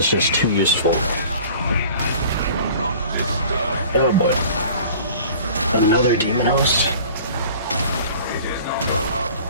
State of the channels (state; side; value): inverted; both; correlation -0.45